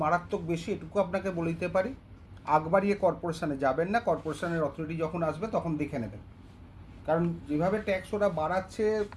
মারাত্মক বেশি, এটুকু আপনাকে বলে দিতে পারি। আগ বাড়িয়ে কর্পোরেশনে যাবেন না, কর্পোরেশনের অথরিটি যখন আসবে তখন দেখে নেবেন। কারণ যেভাবে ট্যাক্স ওরা বাড়াচ্ছে,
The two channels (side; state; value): both; identical; correlation 1.00